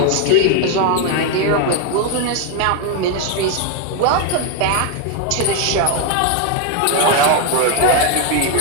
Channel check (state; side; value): different; both; correlation 0.01